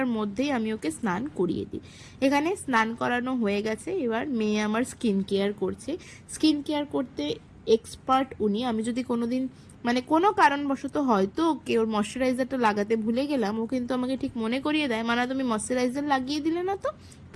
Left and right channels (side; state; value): both; identical; correlation 1.00